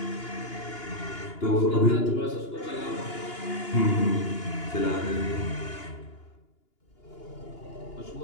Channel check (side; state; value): right; late; 2.8 ms